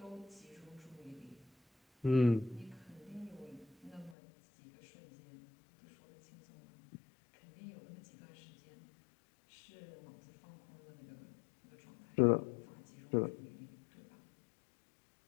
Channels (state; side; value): drops out; right; at 4.2 s